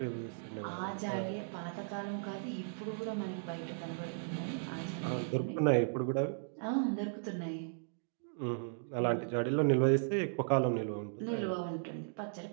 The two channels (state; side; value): silent; left; digital silence